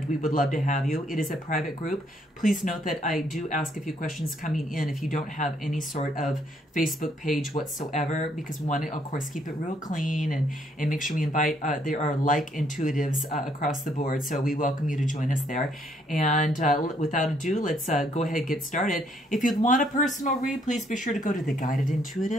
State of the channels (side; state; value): both; normal; correlation 0.69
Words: we would love to have you. It is a private group. Please note that I do ask a few questions coming in if you don't have any sort of Facebook page whatsoever, because we want to, of course, keep it real clean and make sure we invite, there are like intuitives across the board, so we welcome you to join us there. And without ado, let's go ahead and get started. If you'd want a personal read, please be sure to go to